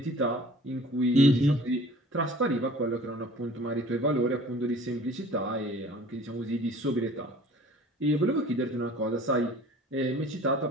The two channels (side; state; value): both; normal; correlation 0.48